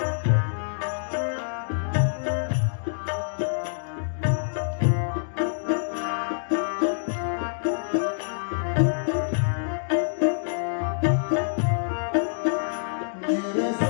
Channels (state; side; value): silent; right; digital silence